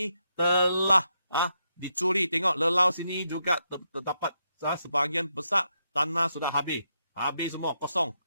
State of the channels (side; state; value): both; inverted; correlation -0.81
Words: telah dicuri. Tengok lelau sini juga terdapat sebahagian besar tanah sudah habis. Habis semua, kosong.